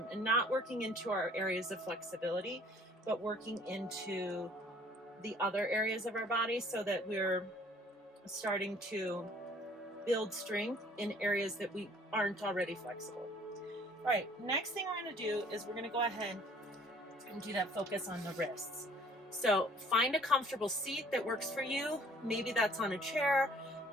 and not working into our areas of flexibility, but working into the other areas of our body so that we're starting to build strength in areas that we aren't already flexible. All right, next thing we're going to do is we're going to go ahead and do that focus on the wrists. So find a comfortable seat that works for you. Maybe that's on a chair,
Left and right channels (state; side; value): normal; both; correlation 0.56